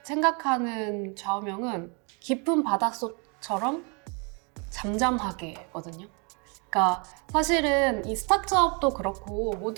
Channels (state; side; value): quieter; left; 34.4 dB